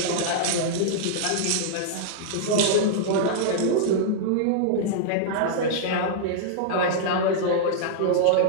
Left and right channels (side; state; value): both; different; correlation -0.02